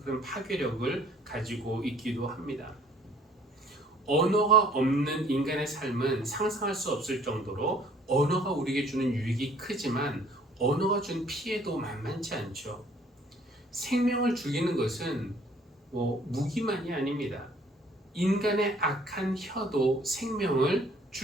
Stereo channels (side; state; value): both; normal; correlation 0.57